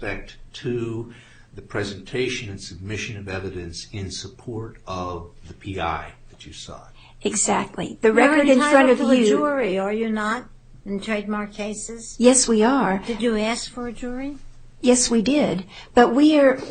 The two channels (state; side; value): identical; both; correlation 1.00